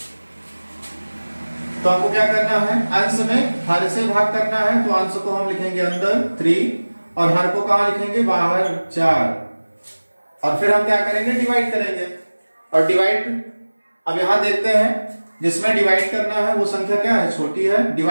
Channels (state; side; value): inverted; both; correlation -1.00